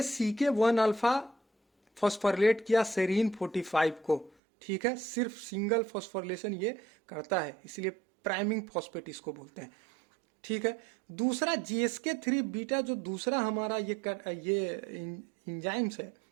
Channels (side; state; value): left; drops out; at 4.3 s